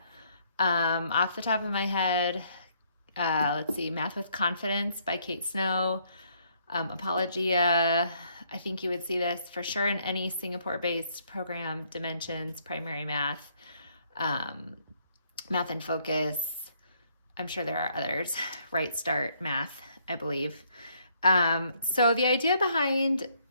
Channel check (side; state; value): both; inverted; correlation -0.69